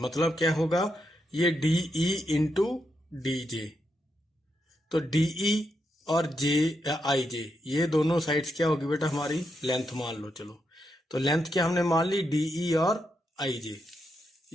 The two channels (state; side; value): normal; both; correlation 0.82